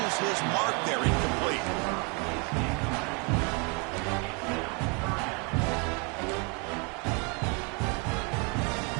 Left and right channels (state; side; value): quieter; left; 33.0 dB